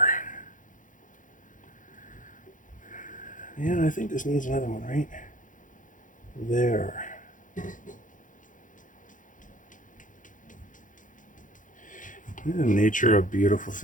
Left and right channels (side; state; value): right; late; 0.38 ms